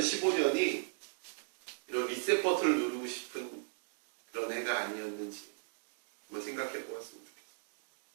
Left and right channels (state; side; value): silent; left; digital silence